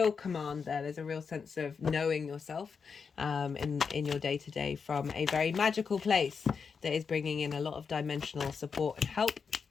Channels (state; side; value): quieter; right; 5.7 dB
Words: command there. There's a real sense of knowing yourself in your day-to-day from a very magical place that is bringing in a lot of dimensional support and help.